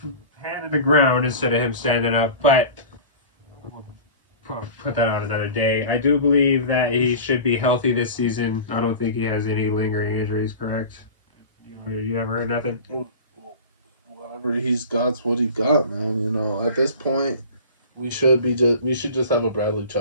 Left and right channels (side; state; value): both; inverted; correlation -0.36